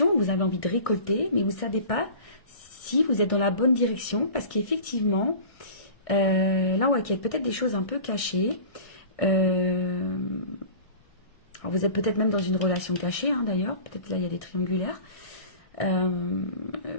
vous avez envie de récolter, mais vous ne savez pas si vous êtes dans la bonne direction. Parce qu'effectivement, là, ouais, il y a peut-être des choses un peu cachées. Alors vous êtes peut-être même dans une relation cachée, hein, d'ailleurs. Peut-être là, il y a des triangulaires.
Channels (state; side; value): late; right; 1.6 ms